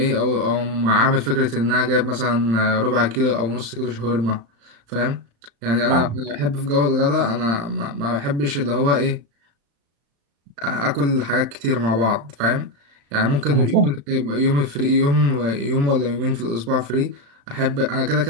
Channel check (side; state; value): left; late; 35 ms